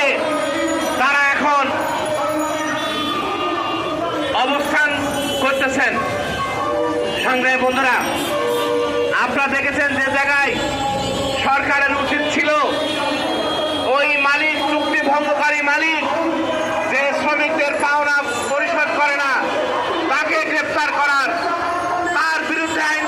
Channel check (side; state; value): both; identical; correlation 1.00